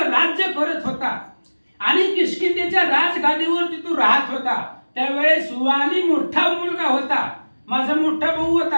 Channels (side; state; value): both; inverted; correlation -1.00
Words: राज्य करत होता आणि किष्किंधेच्या राजगादीवरती तो राहत होता त्यावेळेस वाली मोठा मुलगा होता, माझा मोठा भाऊ